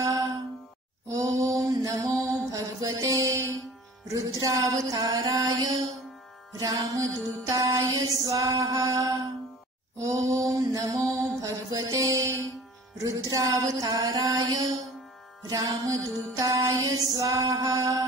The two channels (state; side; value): normal; both; correlation 0.45